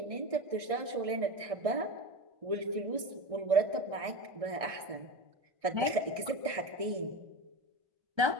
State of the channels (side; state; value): left; late; 1.6 ms